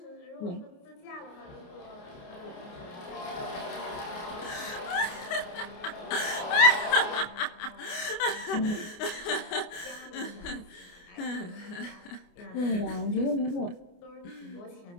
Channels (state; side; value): late; right; 29 ms